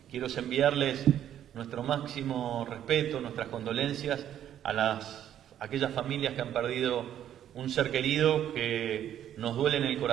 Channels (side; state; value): left; quieter; 10.7 dB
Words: Quiero enviarles nuestro máximo respeto, nuestras condolencias a aquellas familias que han perdido un ser querido que nos duele en el